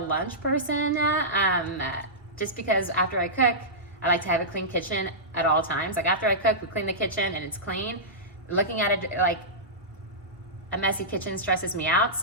person, just because after I cook, I like to have a clean kitchen at all times. Like after I cook, we clean the kitchen and it's clean. Looking at it like a messy kitchen stresses me out.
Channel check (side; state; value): both; normal; correlation -0.15